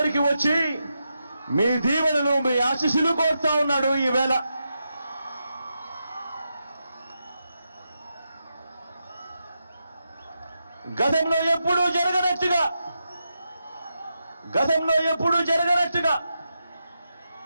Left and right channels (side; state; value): both; inverted; correlation -0.86